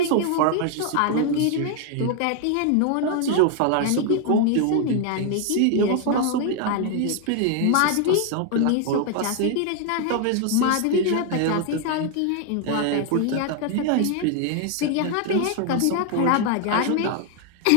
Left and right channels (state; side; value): different; both; correlation 0.00